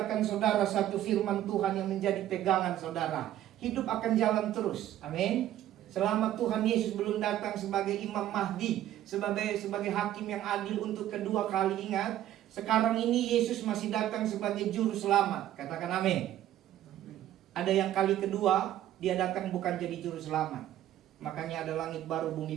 saudara satu firman Tuhan yang menjadi pegangan saudara. Hidup akan jalan terus. Amin. Selama Tuhan Yesus belum datang sebagai Imam Mahdi, sebagai hakim yang adil untuk kedua kali. Ingat, sekarang ini Yesus masih datang sebagai juru selamat. Katakan amin. Ada yang kali kedua dia datang bukan jadi juru selamat. Makanya ada langit baru,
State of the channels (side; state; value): left; quieter; 12.6 dB